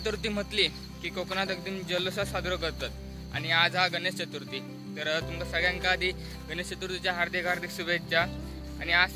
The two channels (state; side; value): identical; both; correlation 1.00